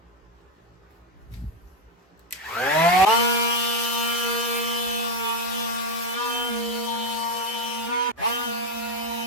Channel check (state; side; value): normal; both; correlation 0.09